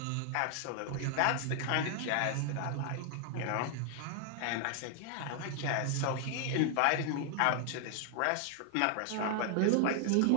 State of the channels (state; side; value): different; both; correlation 0.00